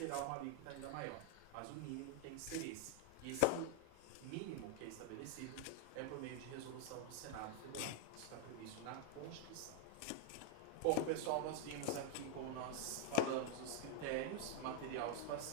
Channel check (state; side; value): different; both; correlation 0.00